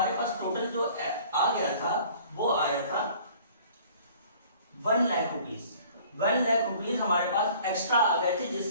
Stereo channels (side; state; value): both; inverted; correlation -0.51